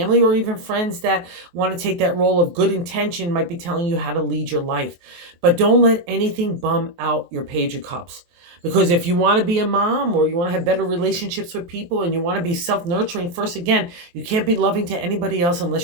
or even friends that want to take that role of good intention might be telling you how to lead your life. But don't let anything bum out your Page of Cups. Because if you want to be a mom or you want to have better relationships with people and you want to be self-nurturing first, again, you can't be loving to anybody else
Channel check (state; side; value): late; left; 23 ms